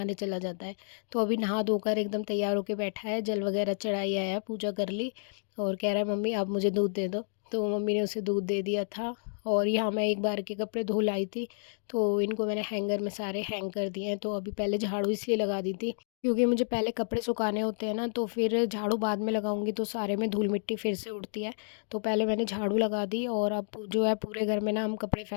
चला जाता है। तो अभी नहा धोकर एकदम तैयार होकर बैठा है, जल वगैरह चढ़ाई आया, पूजा कर ली और कह रहा है मम्मी आप मुझे दूध दे दो। तो मम्मी ने उसे दूध दे दिया था। और यहाँ मैं एक बार के कपड़े धो लाई थी, तो इनको मैंने हैंगर में सारे हैंग कर दिए हैं। तो अभी पहले झाड़ू इसलिए लगा दी थी क्योंकि मुझे पहले कपड़े सुखाने होते हैं ना, तो फिर झाड़ू बाद में लगाऊंगी तो सारे में धूल मिट्टी फिर से उड़ती है। तो पहले मैंने झाड़ू लगा दी और अब जो है पूरे घर में ना हम कपड़े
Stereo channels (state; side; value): silent; right; digital silence